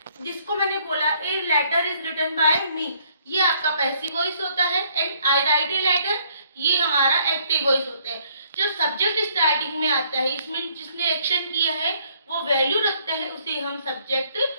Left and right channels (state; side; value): inverted; both; correlation -0.65